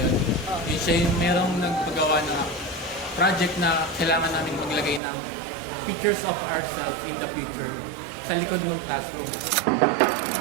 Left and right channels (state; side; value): drops out; left; at 5.0 s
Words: Yun siya yung merong nagpagawa na project na kailangan namin maglagay ng pictures of ourselves in the future sa likod ng classroom.